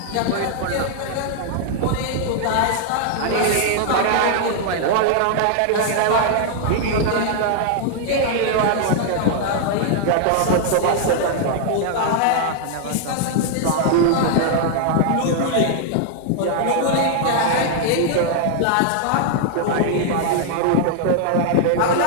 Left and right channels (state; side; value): different; both; correlation 0.00